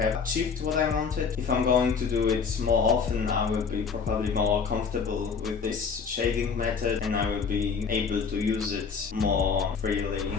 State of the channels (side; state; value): right; quieter; 5.7 dB